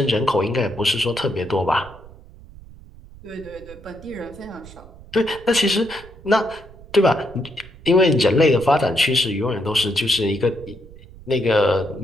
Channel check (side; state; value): right; noise; rumble, 20 dB below the sound